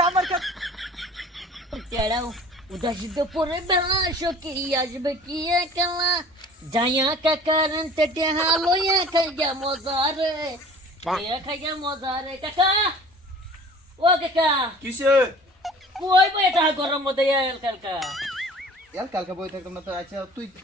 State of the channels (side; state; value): both; normal; correlation 0.46